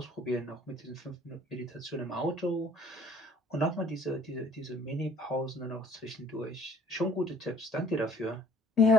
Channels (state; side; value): normal; both; correlation 0.55